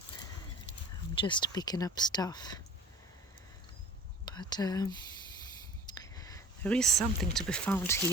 I'm just picking up stuff. But there is something to be found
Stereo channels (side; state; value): both; normal; correlation 0.43